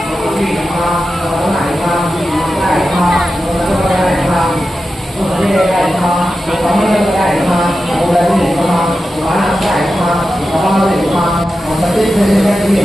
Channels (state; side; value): normal; both; correlation 0.91